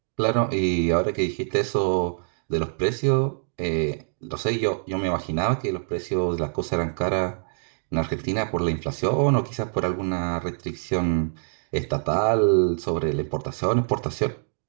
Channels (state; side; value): silent; left; digital silence